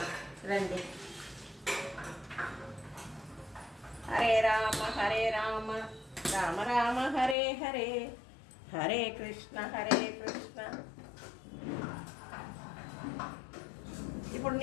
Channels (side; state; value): right; drops out; at 7.4 s